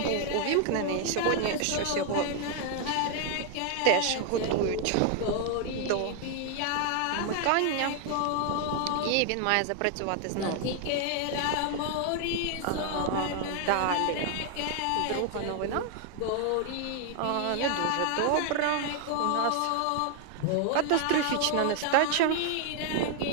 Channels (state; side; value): different; both; correlation 0.00